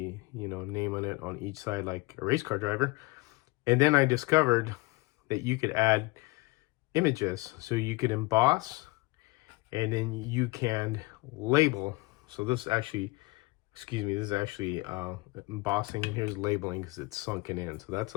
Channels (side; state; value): right; quieter; 23.3 dB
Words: name on it on each side like a race car driver. And then I discovered that you could add images. So you could emboss and then you can label. So this actually, this is actually embossing, and here's labeling because it's sunken in. So that's